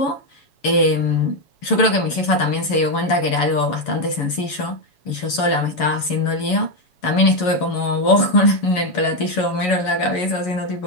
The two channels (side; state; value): right; late; 7.1 ms